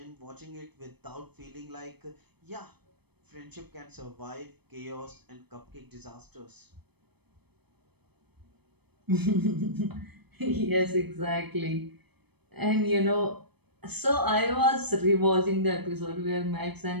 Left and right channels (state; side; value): late; left; 0.98 ms